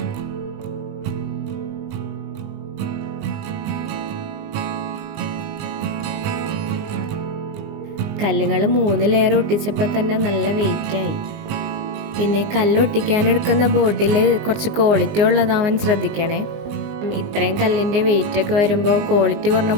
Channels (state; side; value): late; left; 19 ms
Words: കല്ലുകൾ 3 ലെയർ ഒട്ടിച്ചപ്പോൾ തന്നെ നല്ല വെയിറ്റായി. പിന്നെ കല്ലൊട്ടിക്കാനെടുക്കുന്ന ബോട്ടിൽ കുറച്ച് ക്വാളിറ്റി ഉള്ളതാവാൻ ശ്രദ്ധിക്കണേ. ഇത്രയും കല്ലിൻ്റെ വെയിറ്റൊക്കെ വരുമ്പോൾ ക്വാളിറ്റി കുറഞ്ഞ